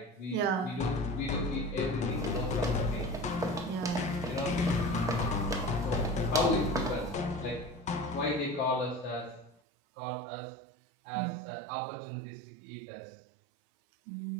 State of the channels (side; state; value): left; drops out; at 9.6 s